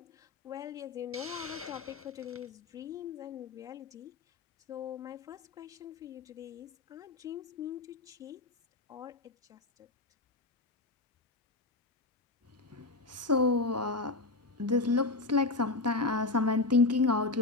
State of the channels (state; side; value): quieter; right; 3.4 dB